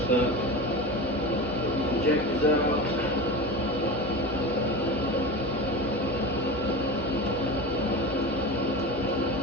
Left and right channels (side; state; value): left; noise; hum, 21 dB below the sound